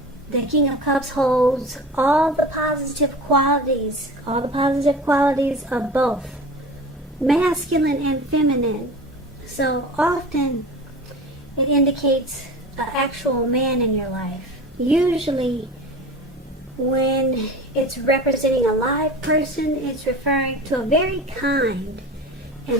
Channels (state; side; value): normal; both; correlation 0.35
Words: The King of Cups holds all the positive qualities of both masculine and feminine. So often it indicates an actual man in your life. Usually when it's representing a live person, it's referring to a very kind